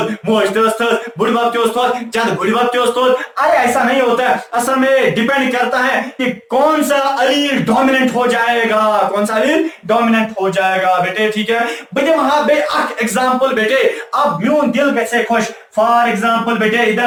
मोज थस बुढ़बाप थोद जद बुढ़बाप थोद, अरे ऐसा नहीं होता है। असल में डिपेंड करता है कि कौन सा अलील डोमिनेंट हो जाएगा, कौन सा अलील डोमिनेंट हो जाएगा बेटे। ठीक है बेटे? वहां पे एग्जांपल बेटे अब म्यून दिल कैसे खुश। फॉर एग्जाम्पल बेटे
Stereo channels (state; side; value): identical; both; correlation 1.00